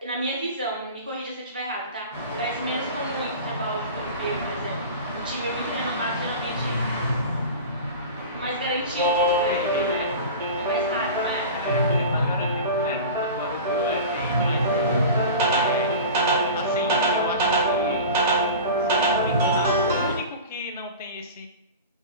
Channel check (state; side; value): inverted; both; correlation -0.33